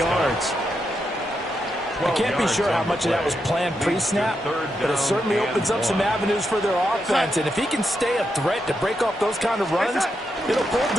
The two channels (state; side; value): normal; both; correlation 0.84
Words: I can't be sure how much of that was planned pre-snap, but it certainly opens up some avenues for their offense. And if he can stay a threat to break off those kind of runs, it'll pull